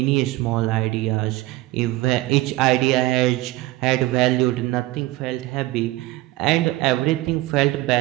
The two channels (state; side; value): quieter; left; 18.2 dB